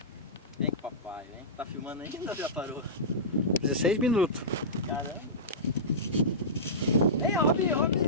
Vem com o papai, vem. Tá filmando ainda ou já parou? 16 minutos. Caramba. Vem, Robinho,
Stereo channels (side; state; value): both; normal; correlation -0.17